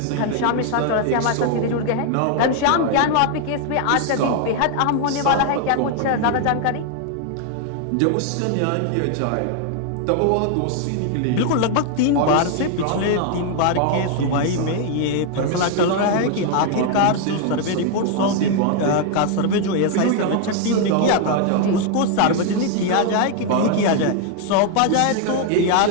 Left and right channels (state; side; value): different; both; correlation 0.00